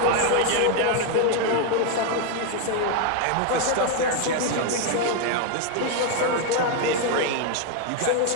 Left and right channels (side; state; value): both; different; correlation 0.01